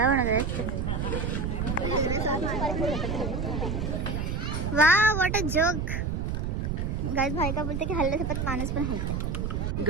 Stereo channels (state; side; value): noise; right; rumble, 1 dB below the sound